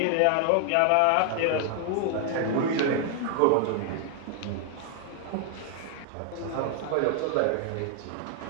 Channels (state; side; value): different; both; correlation 0.00